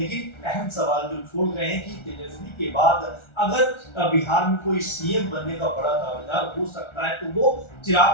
अहम सवाल जो छोड़ रहे हैं कि तेजस्वी के बाद अगर बिहार में कोई सीएम बनने का बड़ा दावेदार हो सकता है तो वो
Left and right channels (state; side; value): late; right; 1.3 ms